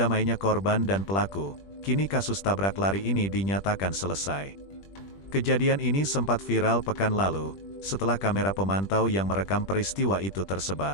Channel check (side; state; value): right; late; 21 ms